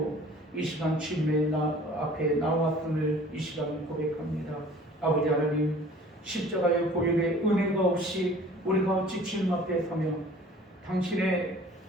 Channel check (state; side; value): normal; both; correlation 0.48